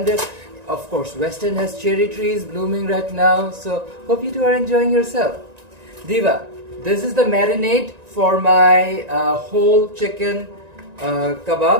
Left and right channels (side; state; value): left; late; 1.9 ms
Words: of course, Western has cherry trees blooming right now. So hope you two are enjoying yourself. Diva, this is the marinade for my whole chicken